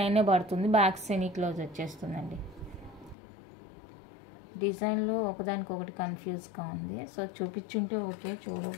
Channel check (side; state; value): right; drops out; at 3.2 s